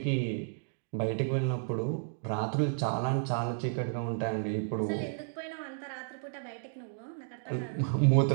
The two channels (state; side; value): silent; left; digital silence